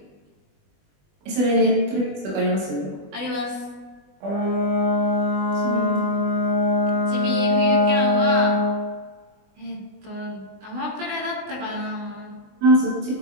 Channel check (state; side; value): late; left; 20 ms